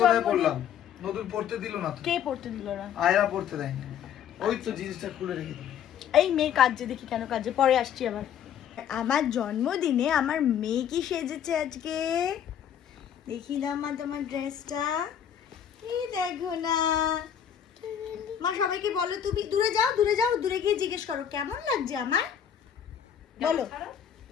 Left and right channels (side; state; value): right; quieter; 9.0 dB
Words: জন্মদিন? নতুন পড়তে দিল না তো। কে পড়তে দিল না? আয়রা পড়তে দেয়নি। ওই তো জিনিসটা খুলে রেখে দিল। এই মেয়ে কাজে, দেখি কেন কাজে, পরে আসছি আবার। আমার জন্মদিনে আমার মেয়ে কি সেজেছে আজকে, দেখি না মা তোমার ড্রেসটা। এই দেখো না মা, সবাইকে বলো, তুমি দূরে যাও, দূরে যাও, দূরে গিয়ে জিজ্ঞেস করো কেমন লাগছে আমার। বলো,